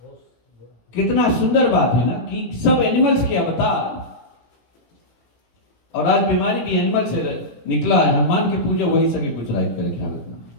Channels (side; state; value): right; late; 17 ms